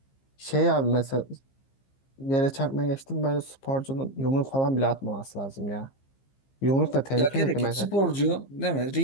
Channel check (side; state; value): right; late; 15 ms